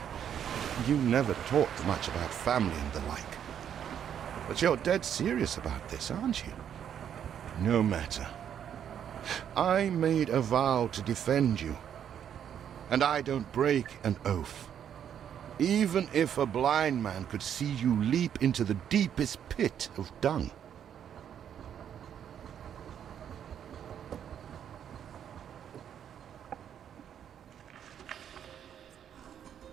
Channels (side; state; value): left; quieter; 9.1 dB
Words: You never talked much about family and the like. But you're dead serious about this, aren't you? No matter. I made a vow to defend you. and I don't break an oath. Even if a blind man could see you leap into the deepest pit of dung.